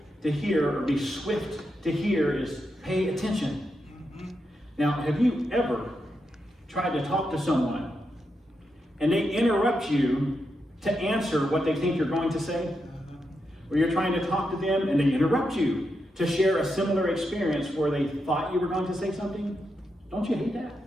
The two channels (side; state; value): both; normal; correlation 0.85